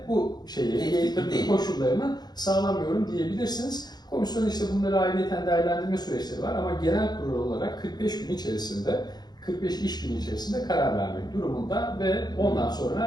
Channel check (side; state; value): right; late; 0.20 ms